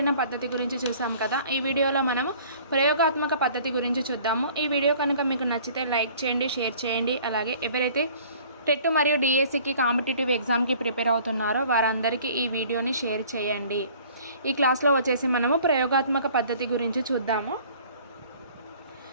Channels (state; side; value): inverted; both; correlation -0.51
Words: పద్ధతి గురించి చూసాం కదా. ఈ వీడియోలో మనము ప్రయోగాత్మక పద్ధతి గురించి చూద్దాము. ఈ వీడియో కనుక మీకు నచ్చితే లైక్ చేయండి, షేర్ చేయండి. అలాగే ఎవరైతే టెట్ మరియు డిఎస్సికి కాంపిటేటివ్ ఎగ్జామ్కి ప్రిపేర్ అవుతున్నారో వారందరికీ ఈ వీడియోని షేర్ చేయండి. ఈ క్లాస్లో వచ్చేసి మనము ప్రయోగాత్మక పద్ధతి గురించి చూద్దాము.